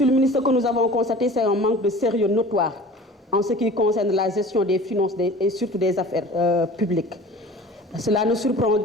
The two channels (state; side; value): normal; both; correlation 0.42